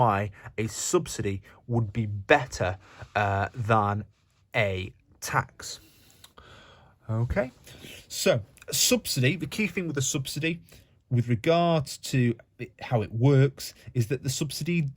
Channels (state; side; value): identical; both; correlation 1.00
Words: a subsidy would be better than a tax. Okay, so subsidy, the key thing with a subsidy with regards to how it works is that the subsidy